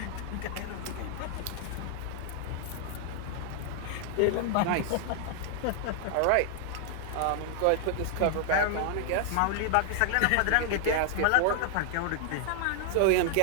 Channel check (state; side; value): different; both; correlation 0.00